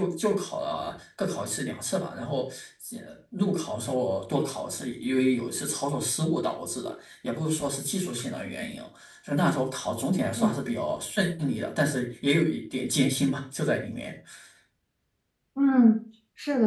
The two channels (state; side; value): identical; both; correlation 1.00